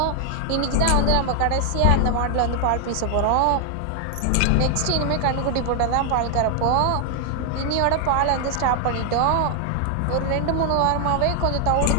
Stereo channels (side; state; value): both; different; correlation 0.00